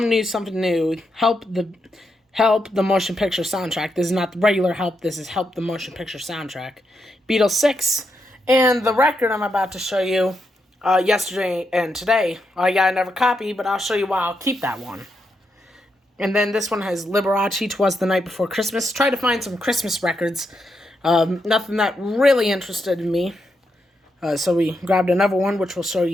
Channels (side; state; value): both; normal; correlation 0.82